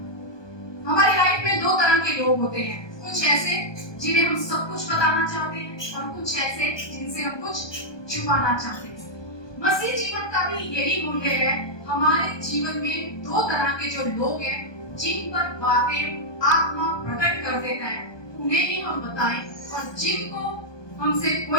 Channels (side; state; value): right; late; 1.2 ms